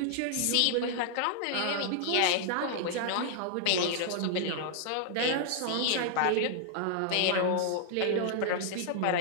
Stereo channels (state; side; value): different; both; correlation -0.01